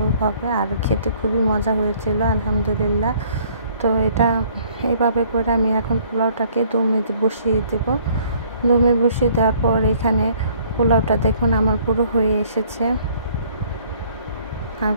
হবে। আর খেতে খুবই মজা হয়েছিল আলহামদুলিল্লাহ। তো এটা এভাবে করে আমি এখন পোলাওটাকে দমে বসিয়ে দেব। দমে বসিয়ে দেওয়ার পর এখানে পোলাওটা দেখুন আমার পুরো হয়ে এসেছে। আর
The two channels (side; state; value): both; inverted; correlation -0.60